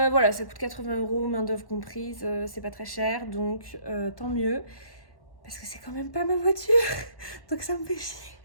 ça coûte 80 €, main d'œuvre comprise, c'est pas très cher, donc tant mieux. Parce que c'est quand même pas ma voiture, donc ça me fait chier.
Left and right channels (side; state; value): right; late; 1.1 ms